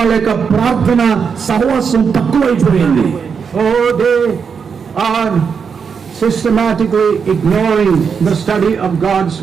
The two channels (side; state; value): left; quieter; 6.2 dB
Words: లేక ప్రార్థన సహవాసం తక్కువైపోయింది. Oh, they are systematically ignoring the study of God's